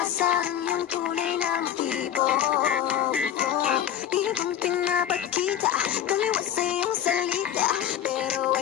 ang iyong tunay na motibo. Ibang pinapakita, tumiwas sa iyong salita, pero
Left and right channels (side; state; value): right; quieter; 10.2 dB